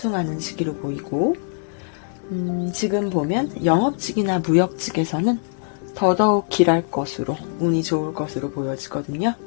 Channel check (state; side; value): silent; right; digital silence